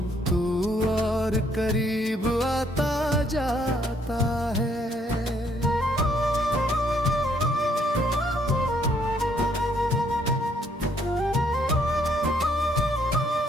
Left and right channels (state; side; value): normal; both; correlation 0.68